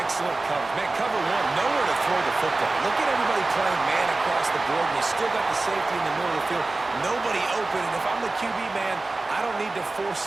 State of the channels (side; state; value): left; quieter; 3.2 dB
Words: excellent coverage. Man, cover 1, nowhere to throw the football. Look at everybody playing man across the board, and you still got the safety in the middle of the field. Nobody open, and if I'm the QB, man, I don't need to